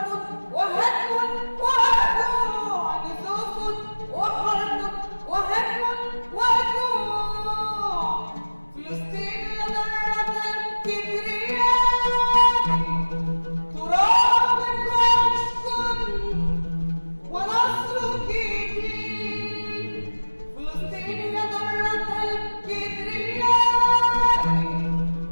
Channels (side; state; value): both; inverted; correlation -1.00